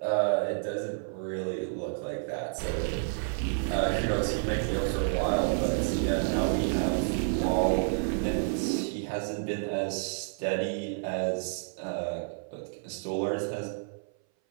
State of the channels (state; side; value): silent; left; 58 dB below the other